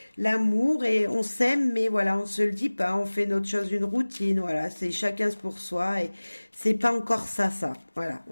et on s'aime, mais voilà, on se le dit pas, on fait notre chose une routine, voilà, c'est chacun pour soi et c'est pas encore ça, voilà, on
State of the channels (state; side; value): inverted; both; correlation -1.00